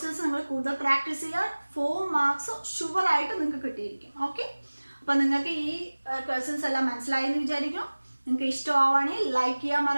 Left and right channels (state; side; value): inverted; both; correlation -1.00